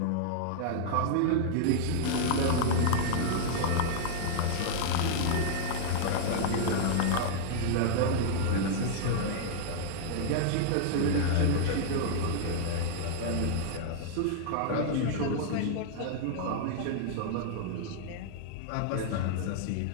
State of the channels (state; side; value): different; both; correlation -0.01